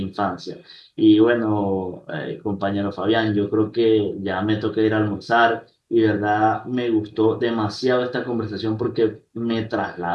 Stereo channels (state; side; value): identical; both; correlation 1.00